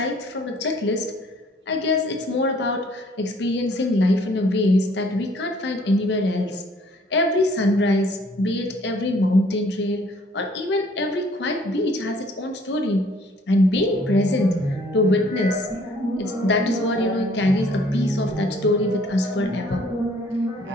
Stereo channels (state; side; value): normal; both; correlation 0.59